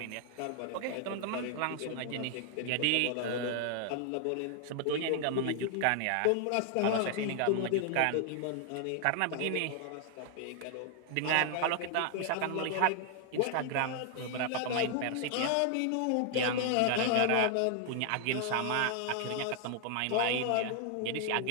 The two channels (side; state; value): both; different; correlation 0.00